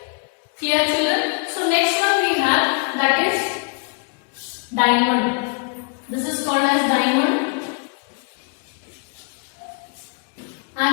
Clear children? So next one we have, that is diamond. This is called as diamond,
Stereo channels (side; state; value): right; quieter; 39.5 dB